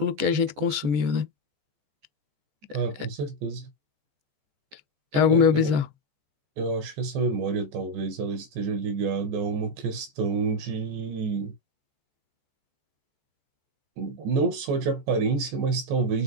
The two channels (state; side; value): late; left; 14 ms